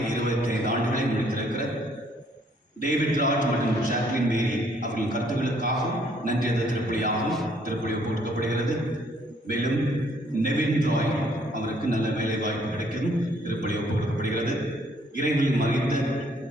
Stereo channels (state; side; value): normal; both; correlation 0.65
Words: 25 ஆண்டுகளை முடித்திருக்கிற டேவிட் ராஜ் மற்றும் ஜாக்லின் மேரி அவர்களின் கருத்துக்களுக்காகவும் நன்றி திருப்பலியாகவும் திருப்பலி போட்டுக்கப்படுகிறது. மேலும் நெவின் ராய் அவருக்கு நல்ல வேலை வாய்ப்பு கிடைக்கவும் திருப்பலி போட்டுக்கப்படுகிறது. இறைவனில் மறைந்த